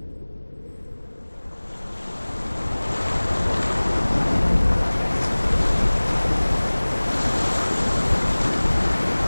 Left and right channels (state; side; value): inverted; both; correlation -1.00